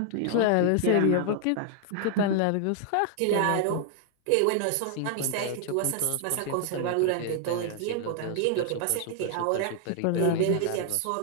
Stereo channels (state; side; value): different; both; correlation 0.00